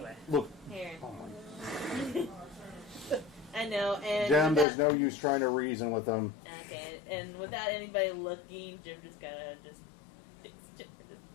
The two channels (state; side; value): drops out; right; at 4.7 s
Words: Look, here. oh my. I know, and Jim, there's without- no use trying to reason with them. Okay, and without anybody looking, Jim just kind of just takes Jim.